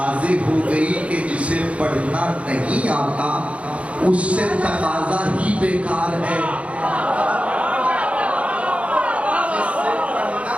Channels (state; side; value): late; left; 0.063 ms